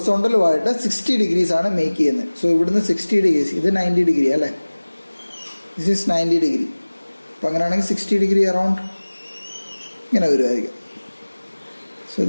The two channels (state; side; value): inverted; both; correlation -1.00